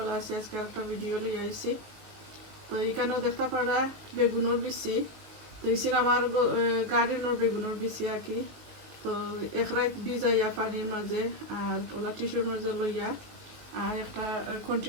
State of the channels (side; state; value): left; late; 19 ms